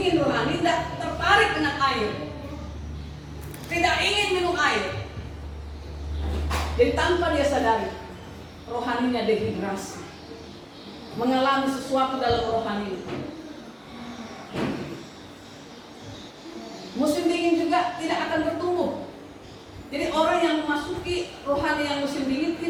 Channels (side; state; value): both; identical; correlation 1.00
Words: rohani tidak tertarik dengan air, tidak ingin minum air. Jadi tanpa dia sadari, rohaninya dehidrasi, mengalami sesuatu dalam rohani. Musim dingin juga tidak akan bertumbuh. Jadi orang yang memasuki rohani yang musim dingin